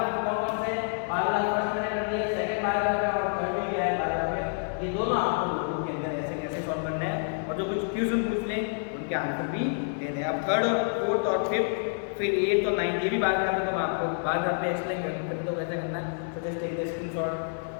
कौन कौन से, बार ग्राफ फर्स्ट मैंने कर दिया, सेकंड बार ग्राफ है और थर्ड भी है बार ग्राफ है, ये दोनों आपको नोटबुक के अंदर ऐसे कैसे सॉल्व करना है, और जो कुछ क्वेश्चन पूछ लें उनके आंसर भी दे दें। अब थर्ड और फोर्थ और फिफ्थ फिर 8 और 9 ये भी बार ग्राफ है, तो मैं आपको बार ग्राफ पे एक्सप्लेन करते तो कैसे करना है। So just take the screenshot.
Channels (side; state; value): right; silent; 59 dB below the other